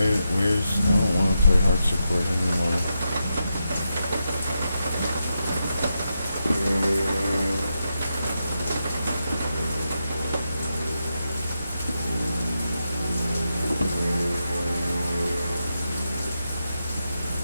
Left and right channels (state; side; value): inverted; both; correlation -0.86